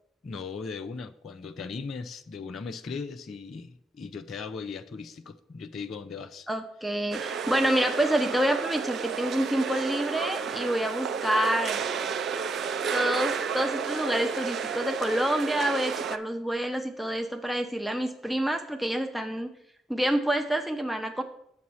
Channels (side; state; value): both; normal; correlation 0.81